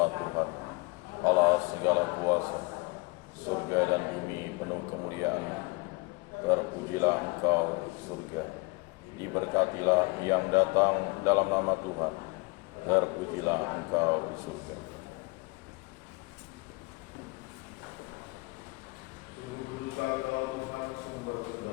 Terpujilah Engkau surga, diberkatilah yang datang dalam nama Tuhan. Terpujilah Engkau di surga.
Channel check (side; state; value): right; quieter; 27.0 dB